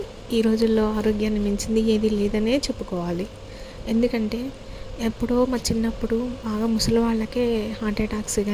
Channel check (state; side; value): identical; both; correlation 1.00